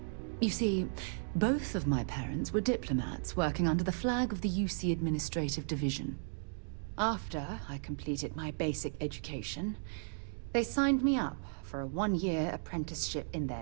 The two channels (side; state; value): left; silent; digital silence